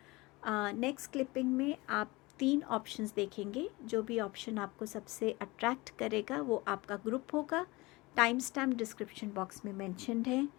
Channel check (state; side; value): quieter; right; 22.7 dB